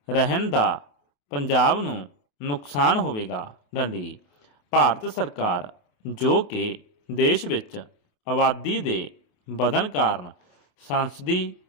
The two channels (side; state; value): right; late; 28 ms